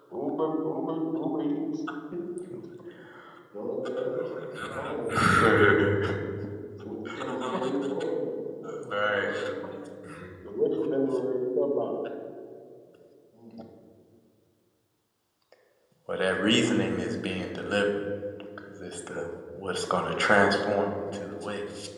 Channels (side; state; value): both; identical; correlation 1.00